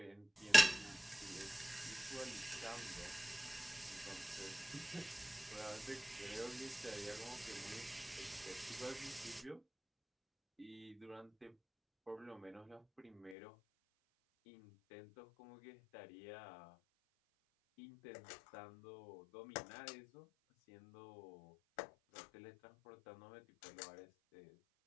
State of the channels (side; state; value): right; drops out; at 13.4 s